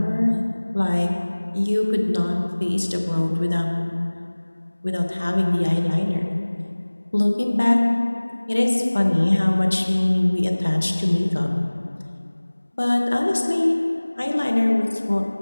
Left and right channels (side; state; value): both; inverted; correlation -1.00